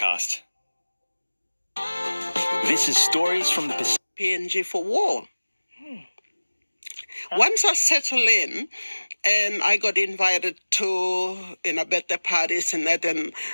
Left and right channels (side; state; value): both; inverted; correlation -1.00